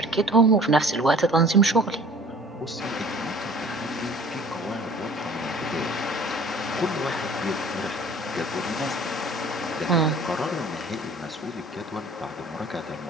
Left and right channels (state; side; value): normal; both; correlation 0.48